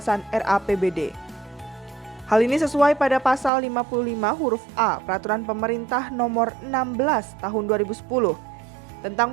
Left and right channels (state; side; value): drops out; left; at 3.5 s